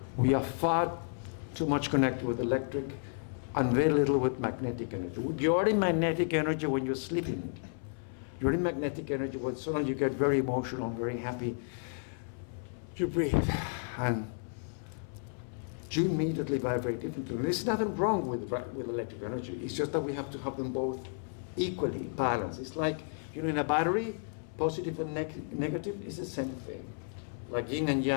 we are far too much connected with electric and very little with magnetic energy. You're in magnetic energy when you're sleeping. You're in magnetic energy when suddenly you get very emotional, very happy. You breathe, and you immediately vibrate differently. And there's nothing wrong with electric energy. It's just that we have to have them both equally balanced. It's like, you know, in a battery, positive and negative is the same thing. Like yin and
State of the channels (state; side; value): silent; right; 56 dB below the other